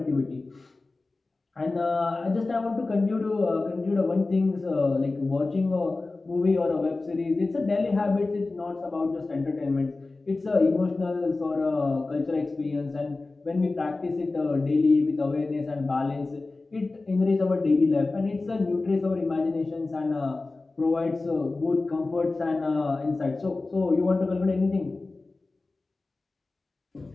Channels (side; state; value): right; quieter; 3.4 dB